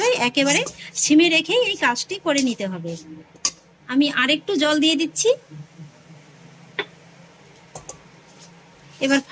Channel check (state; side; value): identical; both; correlation 1.00